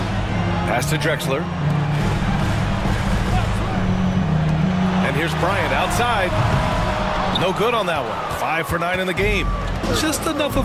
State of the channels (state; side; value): identical; both; correlation 1.00